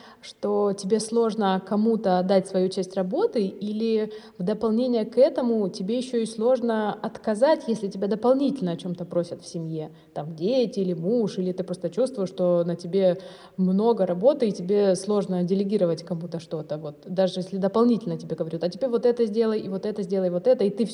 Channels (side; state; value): both; identical; correlation 1.00